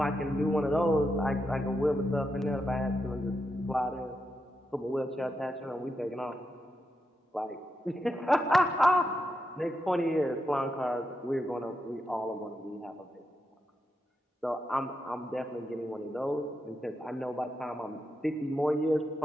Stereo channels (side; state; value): both; normal; correlation 0.85